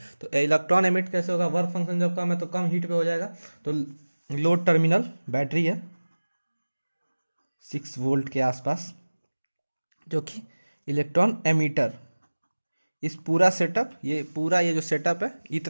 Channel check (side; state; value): both; inverted; correlation -1.00